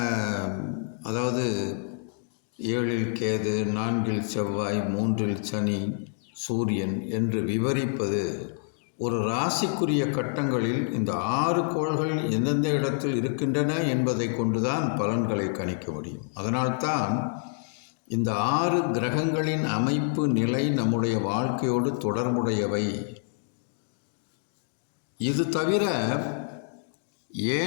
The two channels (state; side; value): silent; right; digital silence